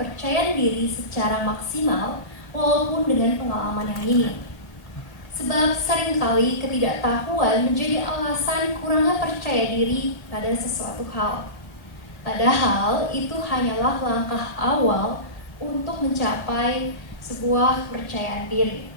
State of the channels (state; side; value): late; right; 1.8 ms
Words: diri secara maksimal walaupun dengan pengalaman yang minim. Sebab seringkali ketidaktahuan menjadi alasan kurangnya percaya diri pada sesuatu hal. Padahal itu hanyalah langkah awal untuk mencapai sebuah kepercayaan diri.